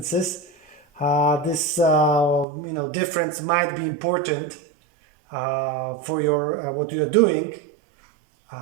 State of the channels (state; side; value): drops out; left; at 2.5 s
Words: this difference might be important for your what you're doing.